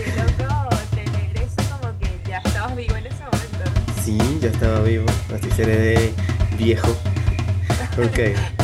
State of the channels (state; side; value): identical; both; correlation 1.00